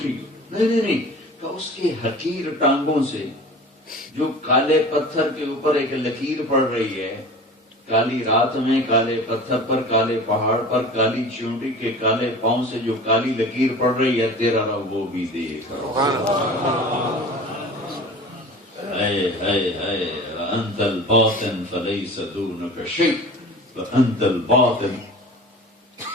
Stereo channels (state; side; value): normal; both; correlation 0.39